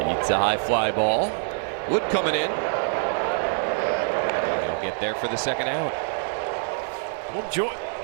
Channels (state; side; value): silent; left; 60 dB below the other